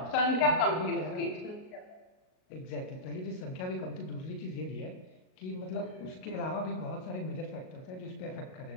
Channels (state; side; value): late; right; 38 ms